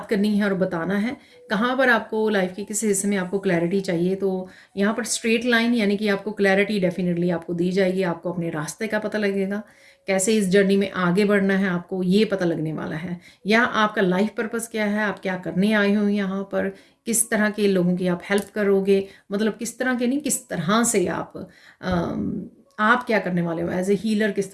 करनी है और बताना है, कहाँ पर आपको लाइफ के किस हिस्से में आपको क्लैरिटी चाहिए, तो यहाँ पर स्ट्रेट लाइन यानी कि आपको क्लैरिटी डेफिनेटली आपको दी जाएगी। आपको अपने रास्ते का पता लगेगा, कैसे इस जर्नी में आगे बढ़ना है आपको ये पता लगने वाला है, या आपका लाइफ पर्पस क्या है, आप क्या करने आए हो यहाँ पर, किस तरह के लोगों की आप हेल्प करोगे, मतलब किस तरह के नहीं, किस तरह से आप क्या करने वाले हो एज ए हीलर, किस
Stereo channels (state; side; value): identical; both; correlation 1.00